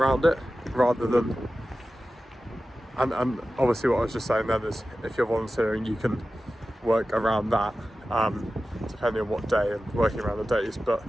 it, rather than, and obviously what I was just saying then is, if you're volunteering you can work around that, depending on what day and working around the days, but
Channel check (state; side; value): normal; both; correlation 0.94